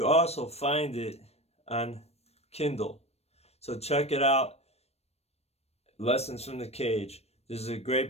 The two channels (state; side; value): late; right; 0.31 ms